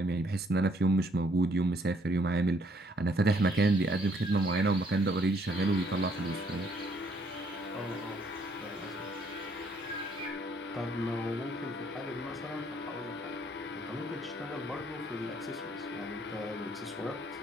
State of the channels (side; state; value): both; normal; correlation 0.67